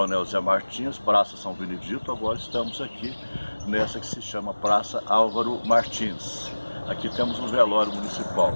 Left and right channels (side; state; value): both; inverted; correlation -1.00